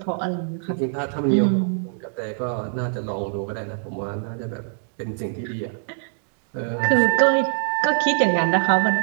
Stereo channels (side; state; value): left; silent; digital silence